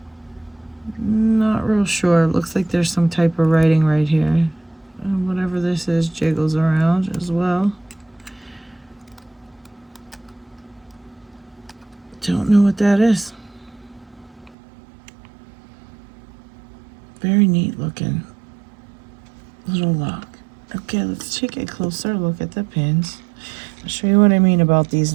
Not real sure. Looks like there's some type of writing right here. Whatever this is jiggles around as well. Don't know what that is. Very neat looking little lock. Okay, let's take a closer look at the pins. I'll show you what I mean about these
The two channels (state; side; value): drops out; left; at 14.6 s